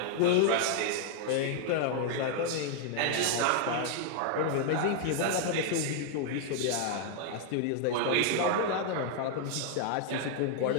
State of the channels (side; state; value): both; different; correlation 0.00